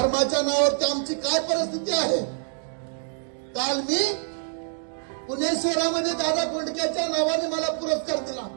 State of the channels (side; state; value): left; silent; digital silence